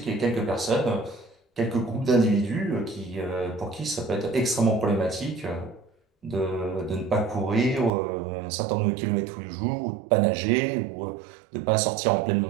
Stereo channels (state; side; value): drops out; left; at 7.9 s